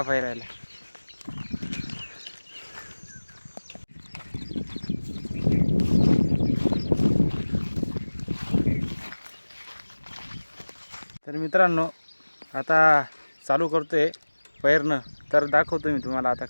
पेरायला. तर मित्रांनो, आता चालू करतोय पेरणं. तर दाखवतो मी तुम्हाला आता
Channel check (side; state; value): both; inverted; correlation -1.00